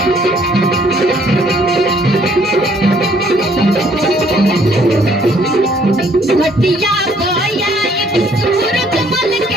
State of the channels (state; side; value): normal; both; correlation 0.63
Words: घटिया पयाई सूरज मल